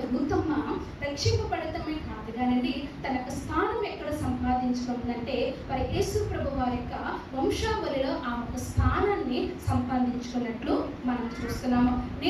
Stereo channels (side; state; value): both; identical; correlation 1.00